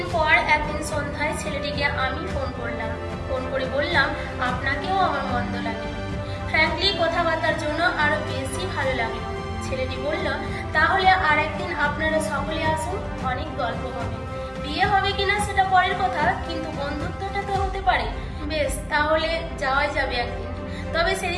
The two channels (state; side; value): identical; both; correlation 1.00